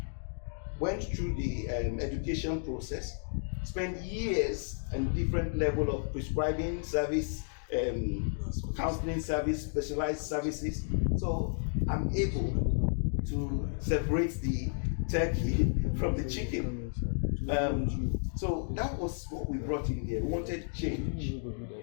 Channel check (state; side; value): silent; right; digital silence